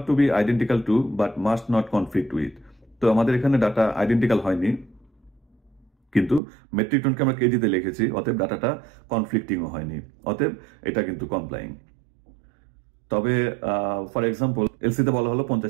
to be identical to but must not conflict with. তো আমাদের এখানে ডাটা আইডেন্টিক্যাল হয়নি, কিন্তু মেট্রিক টনকে আমরা কেজিতে লিখেছি, অতএব ডাটাটা কনফ্লিক্টিংও হয়নি, অতএব এটা কিন্তু কমপ্লাইং। তবে ফর এক্সাম্পল এলসিতে বলা হলো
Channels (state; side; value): drops out; left; at 6.4 s